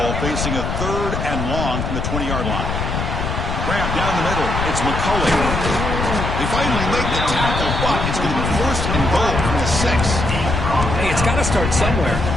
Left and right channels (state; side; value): noise; left; rumble, 2 dB below the sound